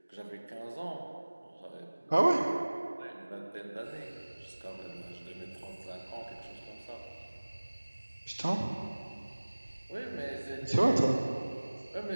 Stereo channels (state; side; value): inverted; both; correlation -1.00